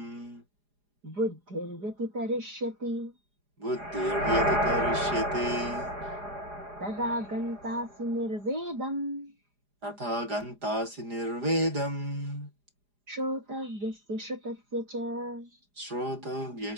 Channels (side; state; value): left; late; 4.9 ms